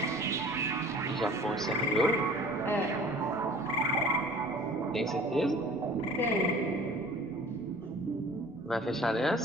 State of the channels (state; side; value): normal; both; correlation 0.46